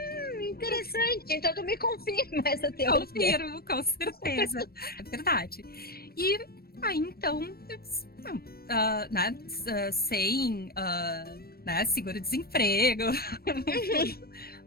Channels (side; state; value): right; late; 0.44 ms